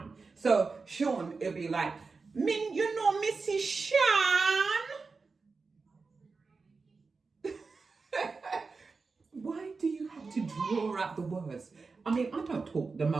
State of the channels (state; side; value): quieter; left; 4.4 dB